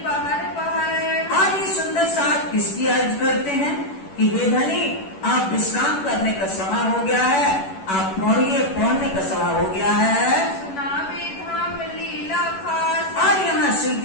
पहर पहर, और ये सुंदर साथ किसकी अर्ज करते हैं कि हे धनी, आप विश्राम करने का समय हो गया है, आप पढ़ने का समय हो गया है। सुनावे धाम लीला खास, और यहाँ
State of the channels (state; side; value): late; right; 11 ms